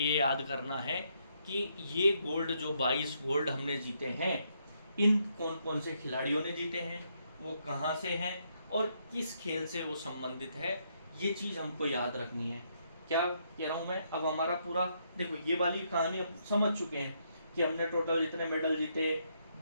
याद करना है कि ये गोल्ड जो 22 गोल्ड हमने जीते हैं, इन कौन कौन से खिलाड़ियों ने जीते हैं, वो कहाँ से हैं और किस खेल से वो संबंधित है, ये चीज़ हमको याद रखनी है। क्या कह रहा हूँ मैं? अब हमारा पूरा देखो, ये वाली कहानी अब समझ चुके हैं कि हमने टोटल इतने मेडल जीते,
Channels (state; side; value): inverted; both; correlation -0.75